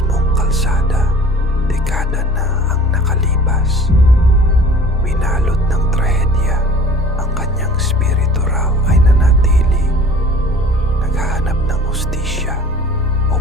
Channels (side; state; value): both; normal; correlation 0.46